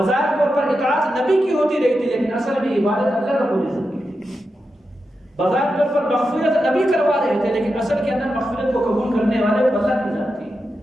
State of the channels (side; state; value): both; normal; correlation 0.89